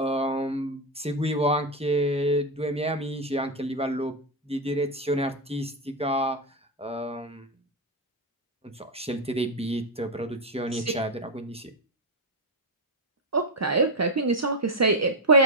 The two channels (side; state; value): both; normal; correlation 0.06